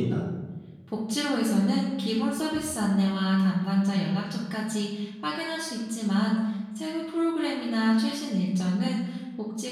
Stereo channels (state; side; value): identical; both; correlation 1.00